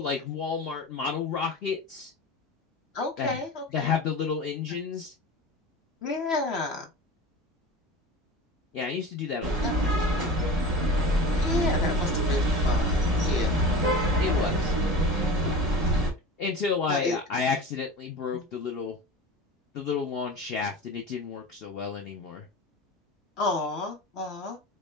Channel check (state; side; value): normal; both; correlation 0.33